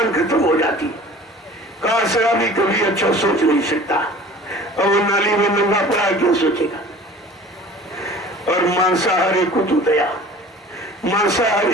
खत्म हो जाती। कहा शराबी कभी अच्छा सोच नहीं सकता, और वो नाली में नंगा पड़ा क्या सोचेगा? और मांसाहारी कुतो दया,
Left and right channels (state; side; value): normal; both; correlation 0.44